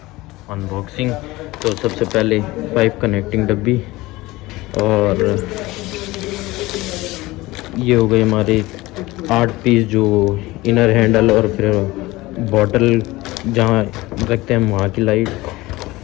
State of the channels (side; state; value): right; quieter; 19.7 dB